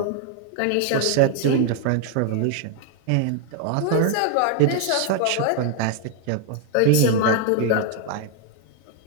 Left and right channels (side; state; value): both; different; correlation 0.00